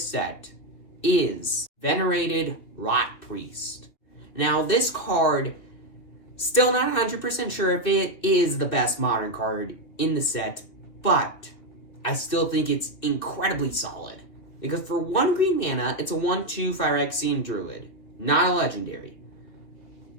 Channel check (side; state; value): right; late; 2.9 ms